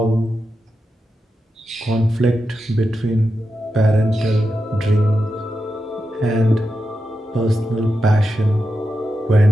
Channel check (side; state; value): both; normal; correlation 0.89